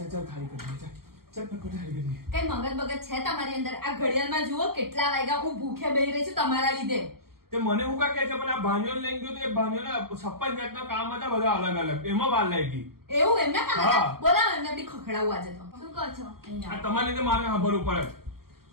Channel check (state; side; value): late; left; 0.93 ms